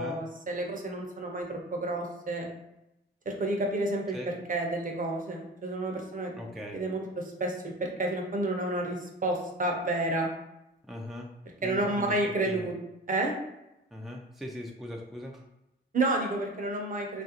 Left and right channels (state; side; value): normal; both; correlation 0.33